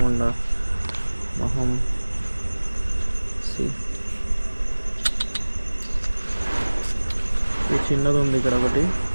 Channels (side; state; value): both; inverted; correlation -1.00